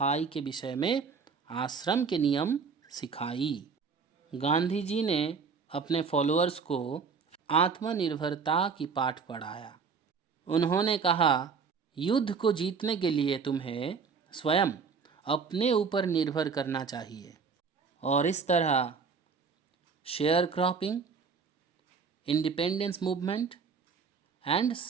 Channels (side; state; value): left; quieter; 5.5 dB